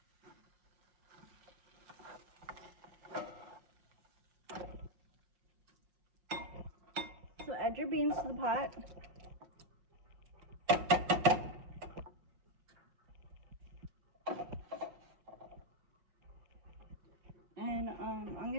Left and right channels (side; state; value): left; late; 5.2 ms